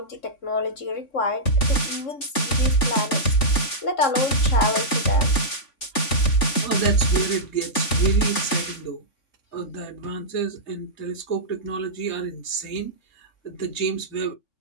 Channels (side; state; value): right; late; 3.5 ms